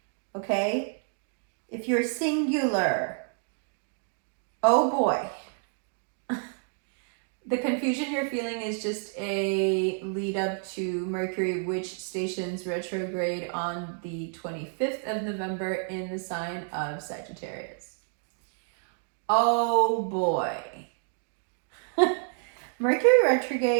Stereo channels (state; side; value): silent; left; 58 dB below the other